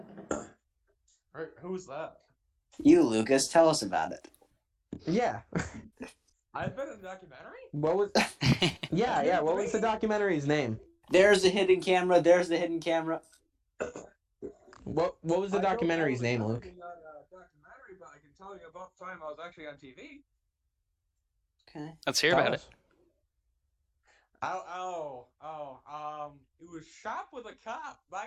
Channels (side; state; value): both; identical; correlation 1.00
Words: Right, who's that? You, Lucas, tell us about it. Yeah. I've been in a documentary? What was? Yeah. What was the documentary's name? There's the hidden camera. There's the hidden camera. What was the documentary's name, Luke? Documentary, but I can tell you about the time I was actually on TV. Okay. Let's hear about it. It was shot with a cop.